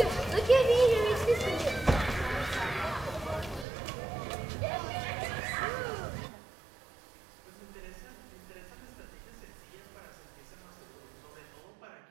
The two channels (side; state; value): left; drops out; at 3.7 s